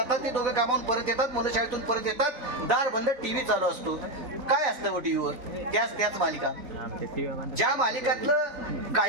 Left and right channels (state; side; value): late; left; 3.4 ms